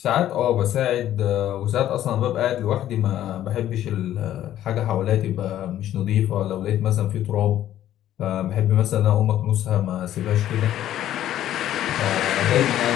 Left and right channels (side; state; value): right; quieter; 12.2 dB